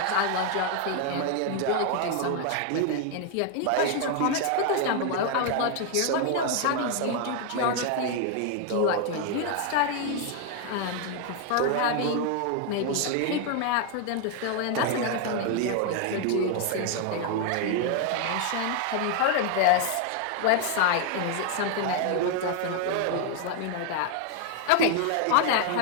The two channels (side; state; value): both; different; correlation 0.00